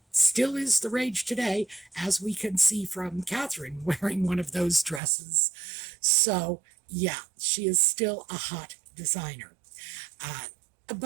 still is the rage today, as we can see from Catherine wearing one of those dresses. So, yeah, she is still a hot designer.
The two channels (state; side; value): drops out; left; at 5.0 s